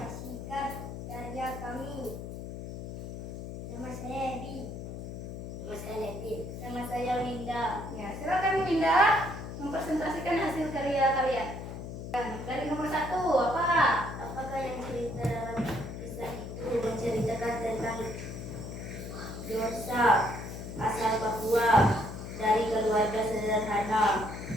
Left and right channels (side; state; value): left; noise; hum, 8 dB below the sound